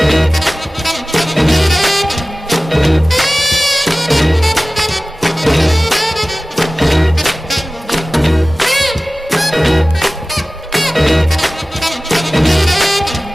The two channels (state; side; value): normal; both; correlation 0.95